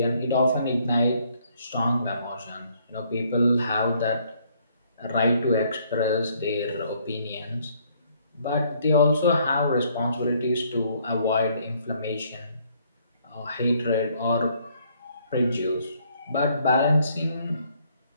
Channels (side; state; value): both; inverted; correlation -0.66